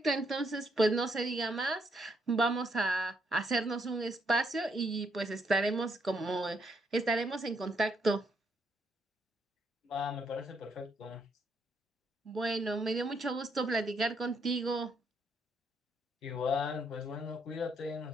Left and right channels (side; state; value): both; normal; correlation 0.74